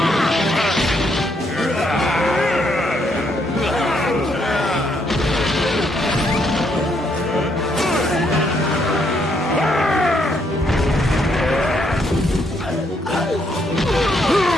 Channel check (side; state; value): both; normal; correlation 0.73